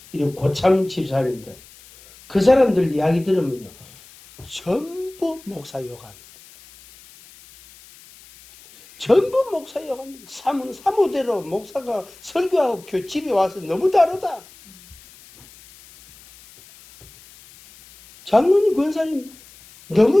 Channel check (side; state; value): left; noise; hiss, 23 dB below the sound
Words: 이런 고참 집사님들. 그 사람들 이야기 들으면요. 전부 목사 욕합니다. 전부 목사 욕합니다. 사무대로 목사가 설교하고 집에 와서 너무 다르다. 장로님, 권사님